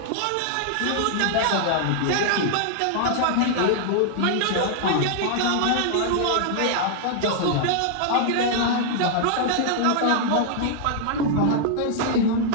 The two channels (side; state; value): both; different; correlation -0.01